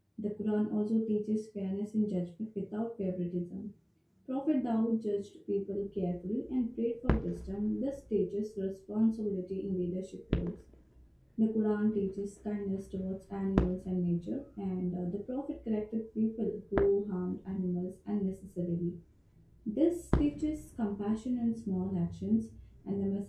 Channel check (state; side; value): identical; both; correlation 1.00